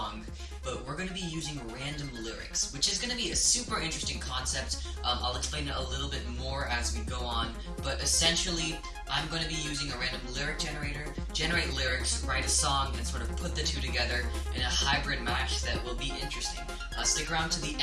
but we're going to be using random lyrics, which is going to be a super interesting concept. I'll explain it a little bit more as we go on, but essentially I'm going to be using a random lyric generator, generate lyrics, write a song, and sort of put the two together in a hybrid match that will be interesting. Stick around to the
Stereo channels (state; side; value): identical; both; correlation 1.00